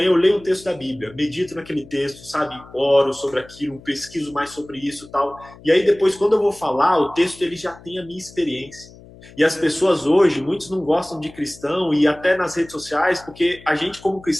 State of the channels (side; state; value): left; noise; hum, 21 dB below the sound